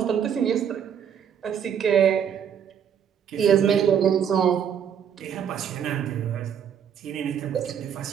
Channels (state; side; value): quieter; left; 8.3 dB